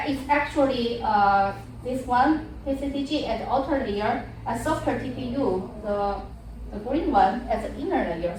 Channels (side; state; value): both; identical; correlation 1.00